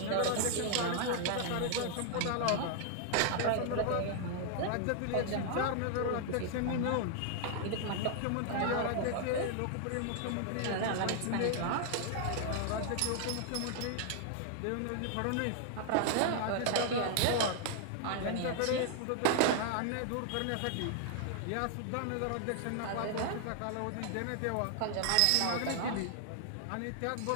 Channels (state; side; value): different; both; correlation 0.00